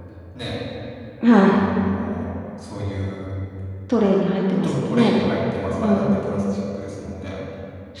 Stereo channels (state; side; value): identical; both; correlation 1.00